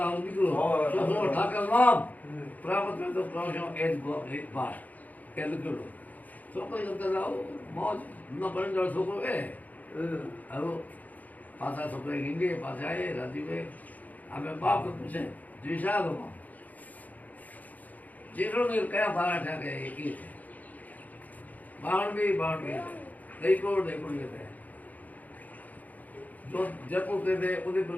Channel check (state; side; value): late; right; 0.079 ms